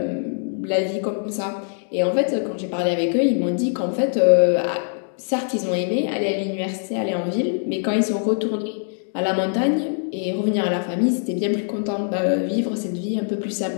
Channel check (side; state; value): right; silent; digital silence